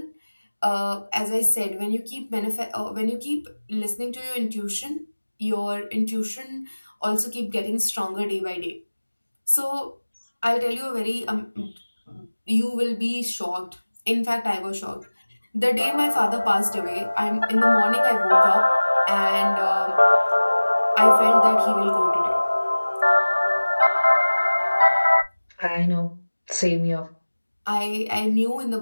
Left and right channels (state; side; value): inverted; both; correlation -1.00